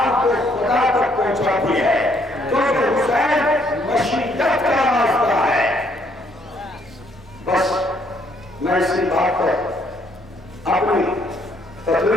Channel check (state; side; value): normal; both; correlation 0.68